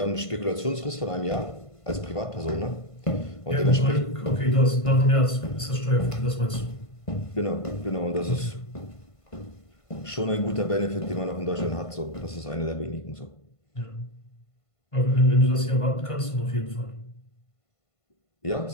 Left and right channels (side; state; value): right; late; 1.5 ms